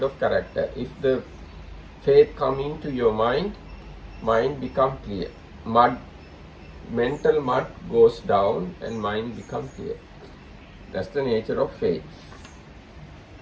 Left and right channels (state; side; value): identical; both; correlation 1.00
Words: of character. If the faith come into your mind, mind become clear. Mental mud goes down and mind become clear. That's the nature of faith.